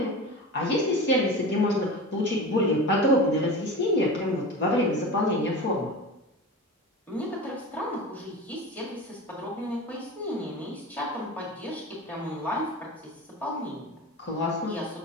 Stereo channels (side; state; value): both; normal; correlation 0.30